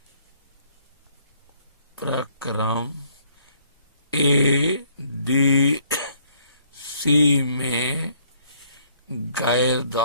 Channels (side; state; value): both; inverted; correlation -0.65